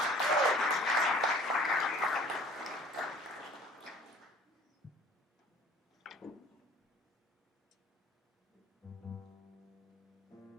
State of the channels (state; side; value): normal; both; correlation 0.50